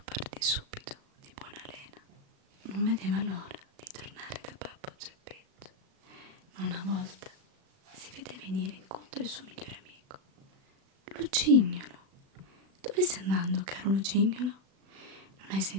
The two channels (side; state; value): left; late; 36 ms